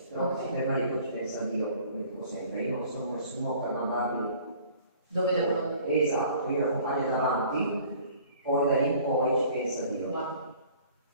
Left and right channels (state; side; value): inverted; both; correlation -0.52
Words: Però ci ferma lì, ci pensa Dio, come dico sempre. Io non sono nessuno per mandarli. Dove devo andare? Esatto, io lo accompagno davanti, poi da lì in poi ci pensa Dio. Guarda.